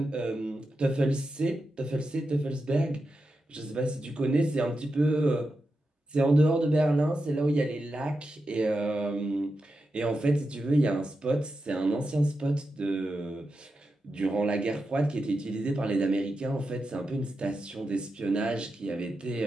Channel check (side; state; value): both; normal; correlation 0.89